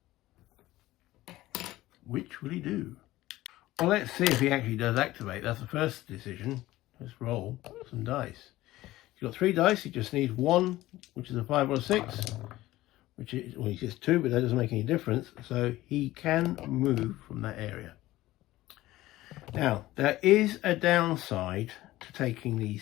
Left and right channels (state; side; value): quieter; right; 16.7 dB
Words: Which will he do? Well, let's see if he actually does activate. That's the first decision. Let's roll some dice. He's got 3 dice. He just needs 1, which is a 5 or a 6, which is, well, he gets 2, but that doesn't make any difference. So he can move from that area. Now, there is a downside to taking